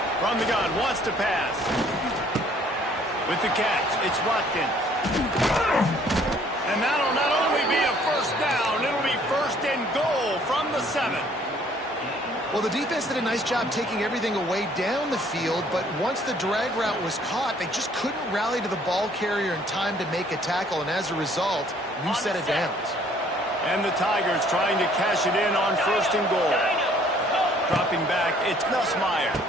From the gun, wants to pass. With the catch, it's Watkins. And that'll not only be a first down, it'll be first and goal from the 7. Well, the defense did a nice job taking everything away down the field, but once the drag route was caught, they just couldn't rally to the ball carrier in time to make a tackle, and as a result, new set of downs. And the Tigers trying to cash it in on first and goal. Dropping back, it's Nussmeier.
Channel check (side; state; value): both; normal; correlation 0.60